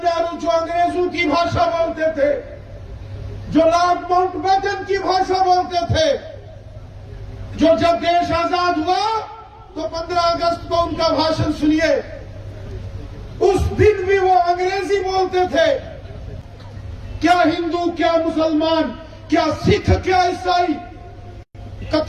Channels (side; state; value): both; identical; correlation 1.00